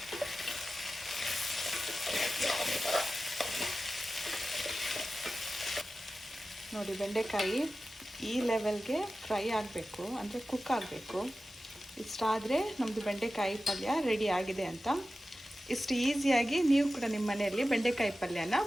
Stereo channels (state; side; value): normal; both; correlation 0.94